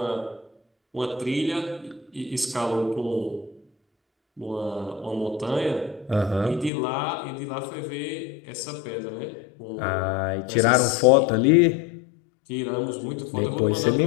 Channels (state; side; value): drops out; right; at 6.7 s